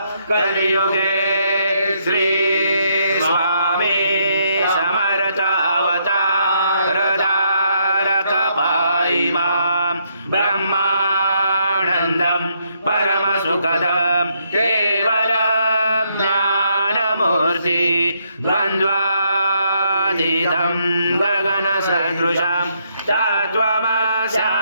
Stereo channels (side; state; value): both; inverted; correlation -0.74